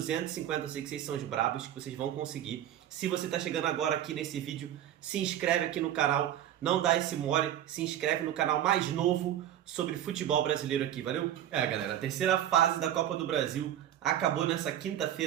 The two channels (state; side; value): quieter; left; 11.3 dB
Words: eu sei que vocês são os brabos, que vocês vão conseguir. Se você tá chegando agora aqui nesse vídeo, se inscreve aqui no canal, não dá esse mole, se inscreve no canal mais novo sobre futebol brasileiro aqui, valeu? Galera, a terceira fase da Copa do Brasil acabou nessa